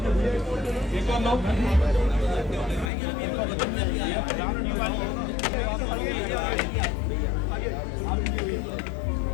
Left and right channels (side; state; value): right; drops out; at 2.9 s